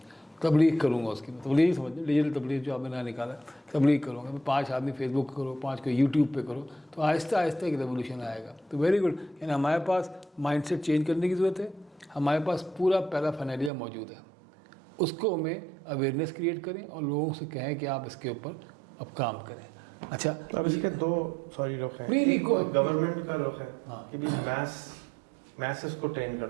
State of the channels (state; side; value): drops out; left; at 13.7 s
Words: تبلیغ کروں گا, اس کی تبلیغ سمجھ لیں, ڈیجیٹل تبلیغ جو آپ نے نہ نکالا, تبلیغ کروں گا, میں 5 آدمی فیس بک کرو, 5 کو یوٹیوب پہ کرو, تو آہستہ آہستہ ایک ریولیوشن آئے گا. تو ویری گڈ. یعنی ہمارے پاس مائنڈ سیٹ چینج کرنے کی ضرورت ہے. ہمارے پاس پورا پیرافینیلیا موجود ہے, اس کو ہمیں اویئرنیس کریٹ کریں اور لوگوں سے کہیں کہ آپ اس کے اوپر اب کام کریں. اچھا اب اس کے دو رخ ہیں. ایک گورنمنٹ کا رخ ہے کہ بھی میسز کو ٹرین